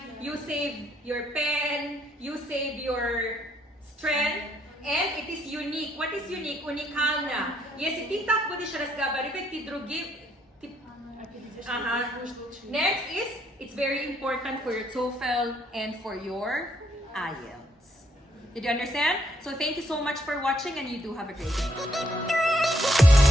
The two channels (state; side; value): normal; both; correlation 0.71